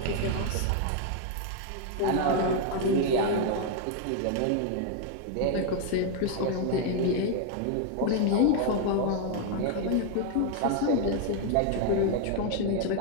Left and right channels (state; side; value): different; both; correlation 0.00